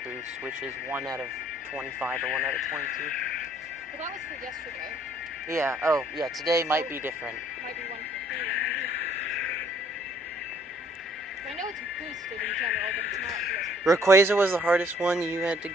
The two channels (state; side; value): normal; both; correlation 0.62